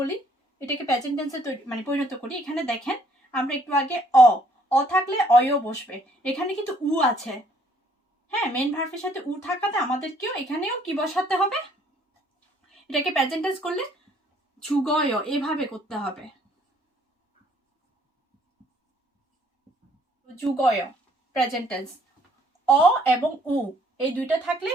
এটাকে প্রেজেন্ট টেন্সে মানে পরিণত করি, এখানে দেখেন আমরা একটু আগে অ থাকলে অয়ও বসবে, এখানে কিন্তু উ আছে, হ্যাঁ, মেন ভার্বের সাথে উ থাকাতে আমাদেরকেও এখানেও কি বসাতে হবে, এটাকে প্রেজেন্ট টেন্স করলে যুগয় এভাবে করতে হবে, যুগয় প্রেজেন্ট টেন্স। অ এবং উ এই দুইটা থাকলে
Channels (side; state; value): both; normal; correlation 0.64